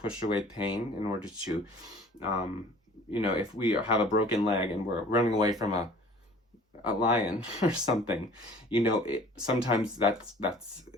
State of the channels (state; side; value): normal; both; correlation 0.49